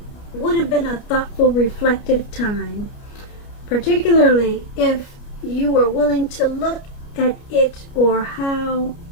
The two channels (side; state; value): right; late; 29 ms